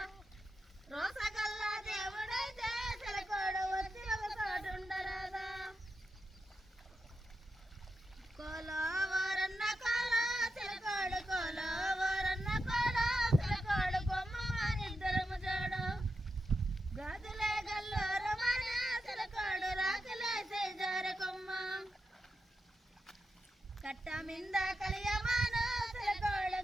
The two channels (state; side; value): normal; both; correlation 0.88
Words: కట్ట మింద కలియమాన సిలకోడు